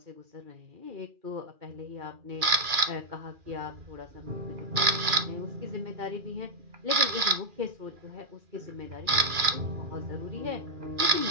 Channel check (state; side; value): late; left; 2.4 ms